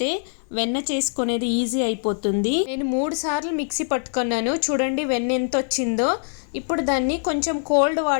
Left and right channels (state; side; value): silent; right; 61 dB below the other